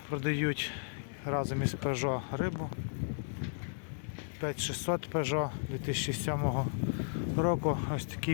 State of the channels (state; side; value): silent; right; digital silence